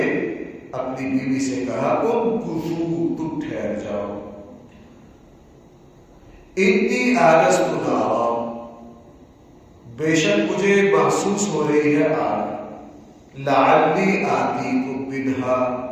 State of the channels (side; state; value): both; identical; correlation 1.00